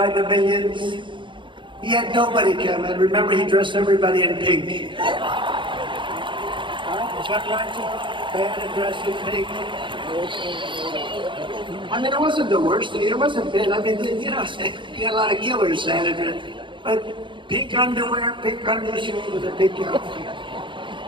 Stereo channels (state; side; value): late; left; 0.24 ms